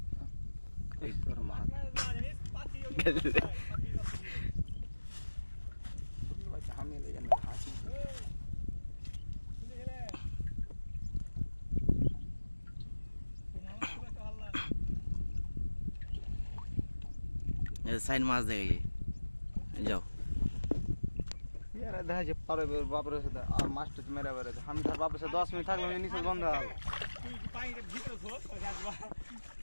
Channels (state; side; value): inverted; both; correlation -1.00